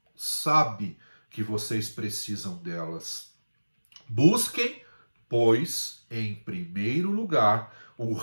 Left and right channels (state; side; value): inverted; both; correlation -1.00